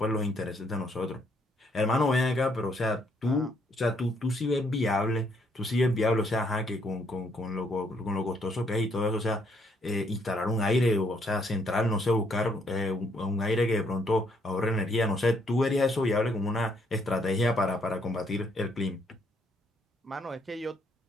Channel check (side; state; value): both; normal; correlation 0.70